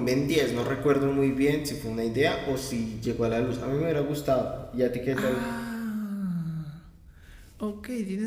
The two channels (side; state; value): both; identical; correlation 1.00